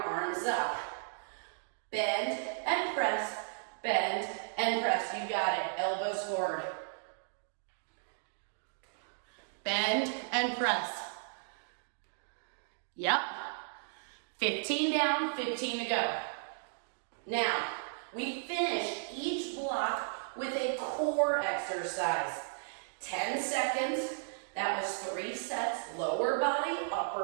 up. Bend and press, bend and press. You got it. Elbows forward. Bend and press. Yep. 15 down, 15 to go. Now, we finish each block with a core exercise. 10 seconds. That was 3 sets. Lower body,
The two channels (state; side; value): silent; left; digital silence